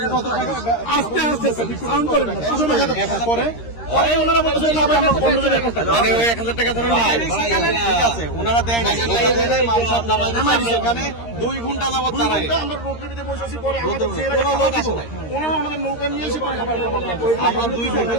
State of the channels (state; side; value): late; right; 13 ms